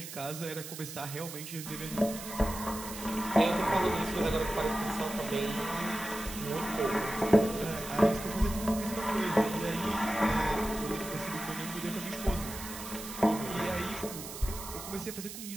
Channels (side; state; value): right; noise; hiss, 10 dB below the sound